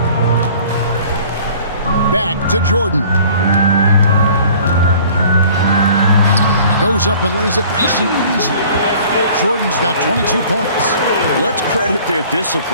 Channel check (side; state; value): both; inverted; correlation -0.50